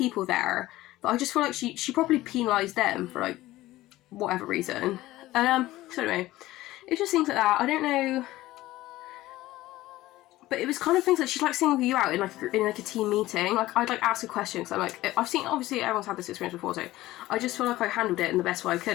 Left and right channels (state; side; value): quieter; right; 16.7 dB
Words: there that I just feel like she probably penalised them for like whatever reason. And so anyway, it just seems like that. I don't know, but it was kind of things like she'd like single you out in like a team meeting. Like, I'd like ask a question, because I'm like, I've seen, obviously everyone's had this experience before, so I just feel like I handled it in the best way I